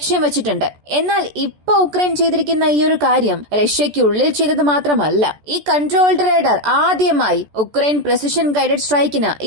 വെച്ചിട്ടുണ്ട്. എന്നാൽ ഇപ്പോൾ ഉക്രൈൻ ചെയ്തിരിക്കുന്ന ഈ ഒരു കാര്യം റഷ്യയ്ക്കുള്ളിൽ ചെയ്തത് മാത്രമല്ല. ഈ കൺട്രോൾഡ് റഡാർ ആദ്യമായി ഉക്രൈൻ പ്രെസിഷൻ ഗൈഡഡ് സ്ട്രൈക്കിന്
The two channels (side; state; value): left; late; 14 ms